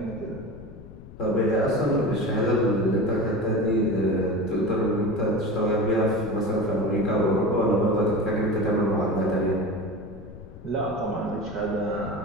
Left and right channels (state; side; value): noise; left; rumble, 16 dB below the sound